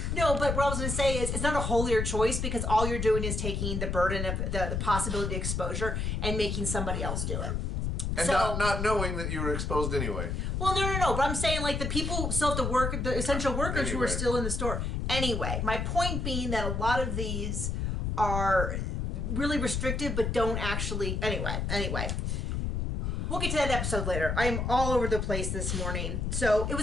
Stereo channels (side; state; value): left; noise; rumble, 1 dB below the sound